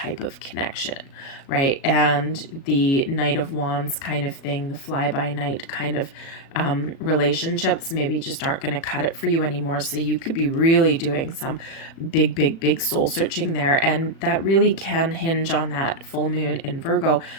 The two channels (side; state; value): right; late; 37 ms